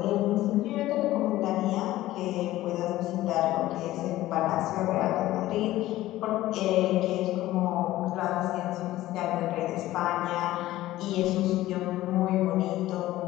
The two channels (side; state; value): right; quieter; 15.7 dB